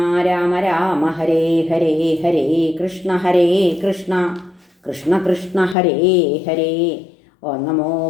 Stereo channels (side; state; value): right; drops out; at 5.8 s